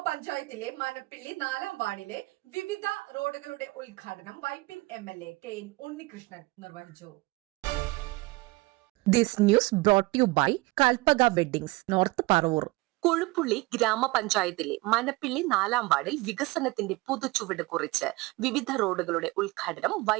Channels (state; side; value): quieter; left; 22.4 dB